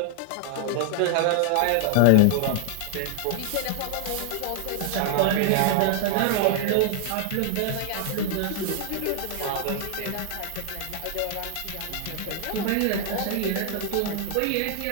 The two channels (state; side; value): different; both; correlation 0.00